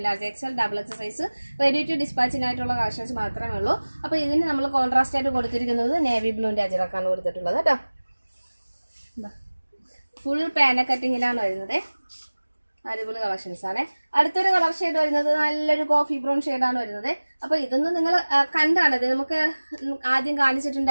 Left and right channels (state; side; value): inverted; both; correlation -1.00